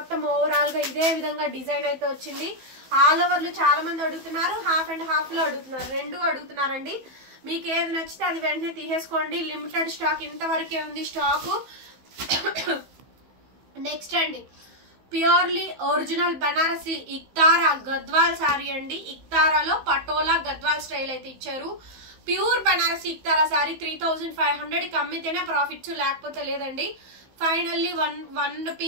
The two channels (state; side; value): late; left; 15 ms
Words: ఓవరాల్ గా ఇదే విధంగా డిజైన్ అయితే వచ్చింది. ఆల్ ఓవర్లు చాలా మంది అడుగుతున్నారు, హాఫ్ అండ్ హాఫ్ లో అడుగుతున్నారు, రెండు అడుగుతున్నారండి. మీకు ఏది నచ్చితే అది వెంటనే తీసేసుకోండి. లిమిటెడ్ స్టాక్ ఇంతవరకే ఉంది స్టాకు. నెక్స్ట్ అండి ప్యూర్లీ ఒరిజినల్ బనారసి ఇక్తారా గద్వాల్ శారీ అండి. ఇక్తారాలో పటోలా గద్వాల్ స్టైల్ అయితే ఇచ్చారు. ప్యూర్ బనారసి ఇక్తారా శారీ 3500కి అమ్మితేనే ప్రాఫిట్స్, లేకపోతే లేదండి. ఫైనల్లీ వన్